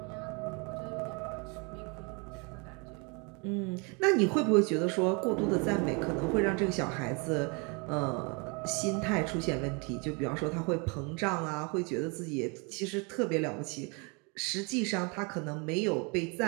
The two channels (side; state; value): left; quieter; 31.8 dB